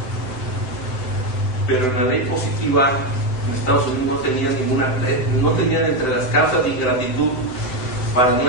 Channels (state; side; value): late; right; 7.8 ms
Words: pero en la ley positiva en Estados Unidos no tenían entre las causas de ingratitud para no